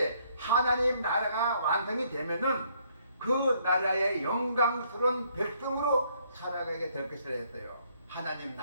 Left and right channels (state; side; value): inverted; both; correlation -0.67